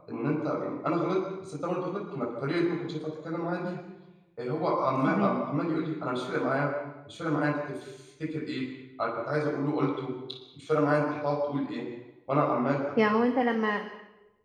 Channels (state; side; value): identical; both; correlation 1.00